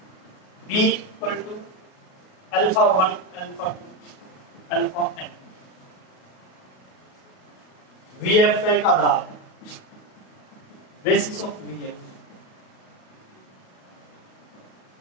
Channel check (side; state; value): right; late; 37 ms